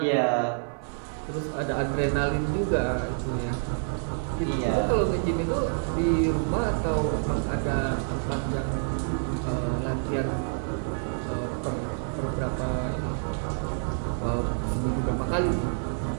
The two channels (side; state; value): left; silent; digital silence